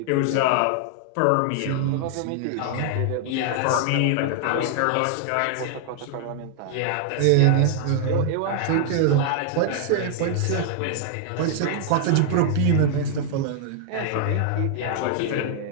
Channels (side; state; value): both; different; correlation 0.00